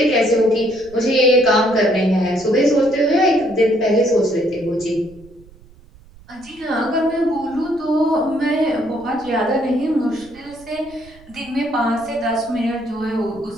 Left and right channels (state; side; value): noise; right; rumble, 24 dB below the sound